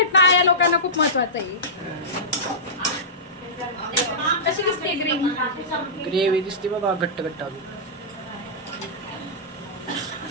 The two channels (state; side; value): normal; both; correlation -0.16